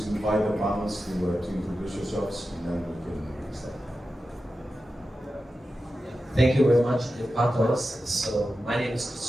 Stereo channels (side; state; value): both; normal; correlation 0.92